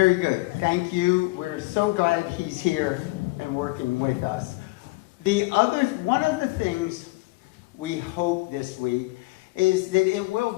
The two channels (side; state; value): right; quieter; 23.0 dB